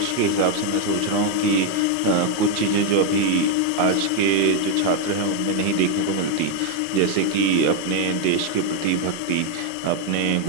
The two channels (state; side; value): different; both; correlation 0.01